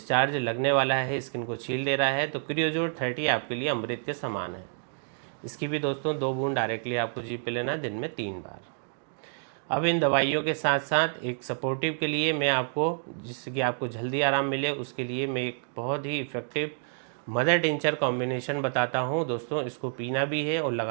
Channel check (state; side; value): silent; left; digital silence